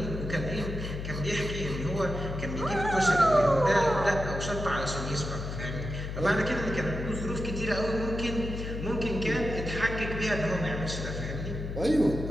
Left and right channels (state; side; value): noise; left; hum, 6 dB below the sound